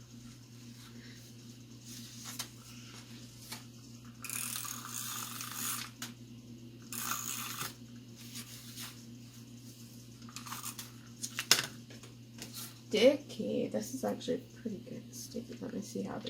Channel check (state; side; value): identical; both; correlation 1.00